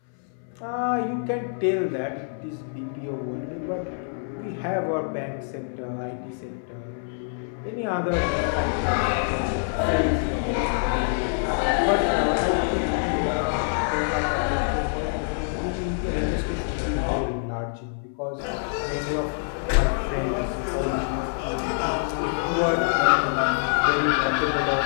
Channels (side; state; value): right; silent; 61 dB below the other